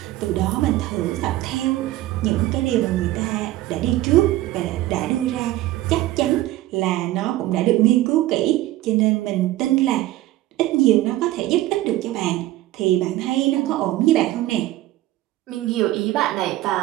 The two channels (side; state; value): left; quieter; 15.8 dB